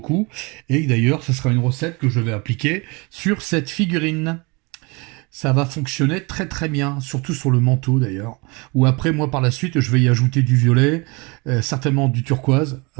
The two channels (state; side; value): quieter; left; 28.1 dB